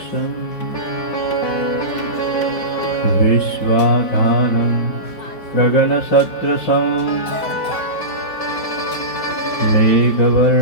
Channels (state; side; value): late; right; 4.6 ms